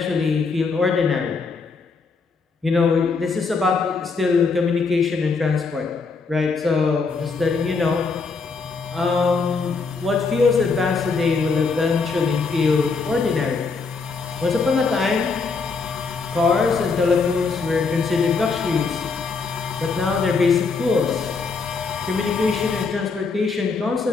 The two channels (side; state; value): right; quieter; 4.6 dB